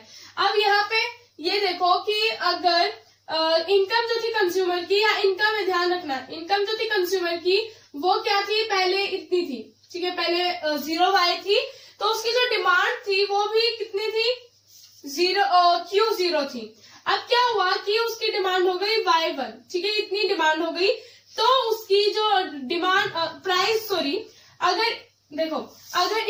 अब यहाँ पे ये देखो कि अगर इनकम जो थी कंज्यूमर की, या इनकम में ध्यान रखना, इनकम जो थी कंज्यूमर की वो क्या थी, पहले इतनी थी, ठीक है, पहले 0Y थी, तो उसकी जो डिमांड थी वो भी कितनी थी, Q0 थी। अब क्या हुआ कि उसकी डिमांड हो गई Y1, ठीक है, इतनी डिमांड हो गई तो उसकी जो डिमांड अगर देखो अगर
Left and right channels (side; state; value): both; identical; correlation 1.00